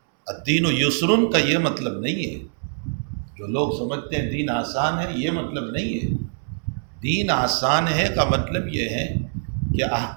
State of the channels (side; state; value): left; silent; digital silence